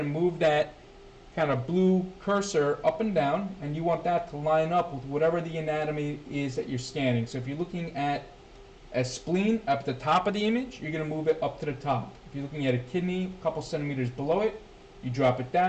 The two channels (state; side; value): identical; both; correlation 1.00